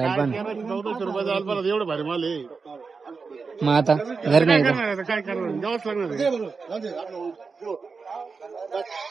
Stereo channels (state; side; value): quieter; left; 4.8 dB